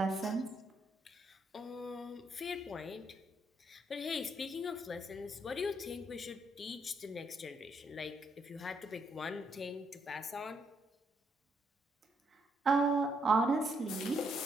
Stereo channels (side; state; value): both; normal; correlation 0.75